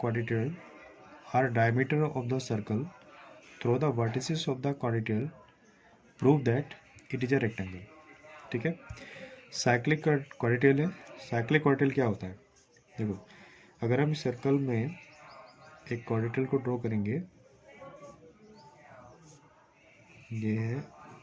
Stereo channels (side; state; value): both; identical; correlation 1.00